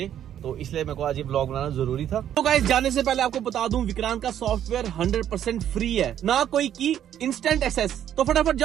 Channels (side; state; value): left; quieter; 10.5 dB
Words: तो इसलिए मेरे को आज ये ब्लॉग बनाना जरूरी था। तो गाइस जाने से पहले आपको बता दूं, विक्रांत का सॉफ्टवेयर 100% फ्री है, ना कोई की, इंस्टेंट एक्सेस। तो फटाफट